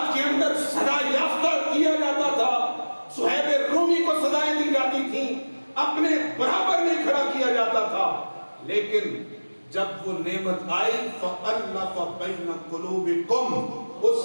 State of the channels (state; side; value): inverted; both; correlation -1.00